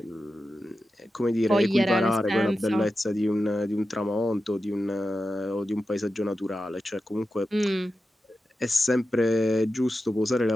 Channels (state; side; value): normal; both; correlation 0.91